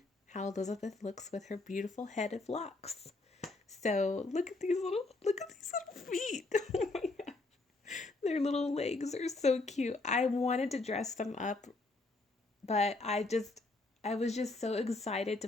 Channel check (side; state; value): right; quieter; 3.2 dB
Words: how Elizabeth looks with her beautiful head of locks. So look at these little feet. Oh my god. Their little legs are so cute. I wanted to dress them up, but I was just so excited to